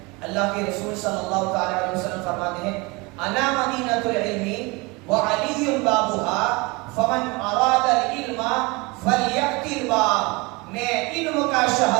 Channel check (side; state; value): left; quieter; 25.9 dB